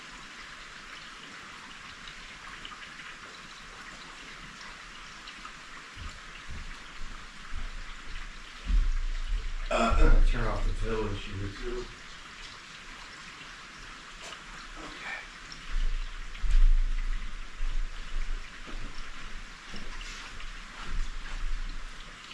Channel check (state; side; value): identical; both; correlation 1.00